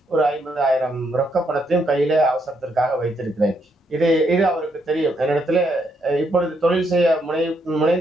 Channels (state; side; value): normal; both; correlation 0.75